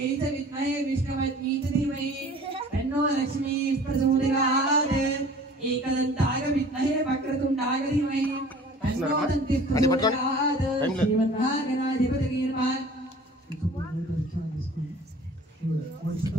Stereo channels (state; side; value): normal; both; correlation 0.47